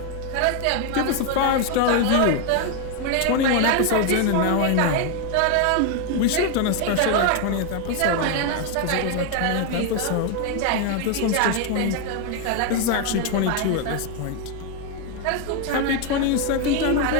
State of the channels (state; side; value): different; both; correlation 0.01